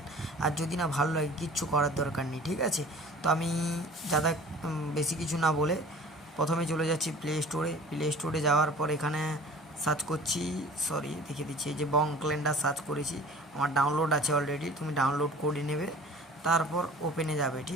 আর যদি না ভালো লাগে কিচ্ছু করার দরকার নেই। ঠিক আছে, তো আমি যারা বেশি কিছু না বলে প্রথমে চলে যাচ্ছি প্লে স্টোরে যাওয়ার পর এখানে সার্চ করছি, দেখিয়ে দিচ্ছি, এই যে বং ক্যালেন্ডার সার্চ করেছি, আমার ডাউনলোড আছে অলরেডি, তুমি ডাউনলোড করে নেবে। তারপর ওপেনে যাবে।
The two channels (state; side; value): normal; both; correlation 0.45